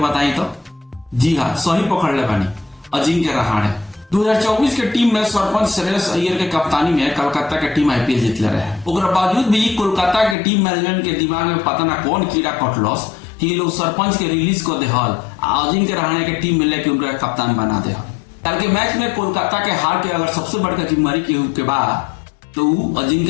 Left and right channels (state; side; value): drops out; right; at 10.4 s